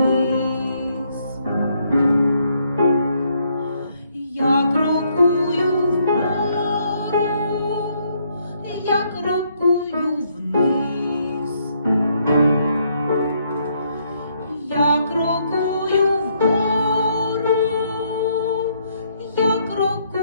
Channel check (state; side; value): inverted; both; correlation -0.72